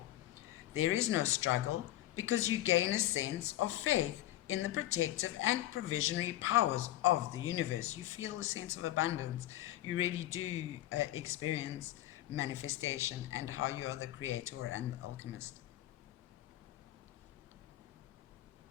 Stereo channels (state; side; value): quieter; right; 14.5 dB